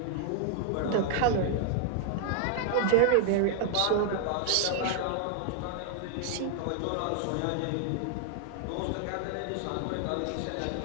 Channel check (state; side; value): different; both; correlation 0.00